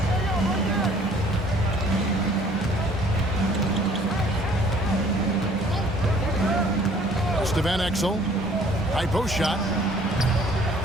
To Van Exel. High post shot.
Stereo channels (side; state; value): both; normal; correlation 0.56